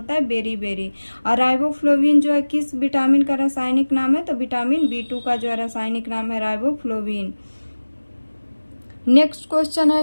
है बेरी। और राइबोफ्लोविन जो है किस विटामिन का रासायनिक नाम है, तो विटामिन B2 का जो है रासायनिक नाम है राइबोफ्लोविन। नेक्स्ट क्वेश्चन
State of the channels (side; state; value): both; inverted; correlation -1.00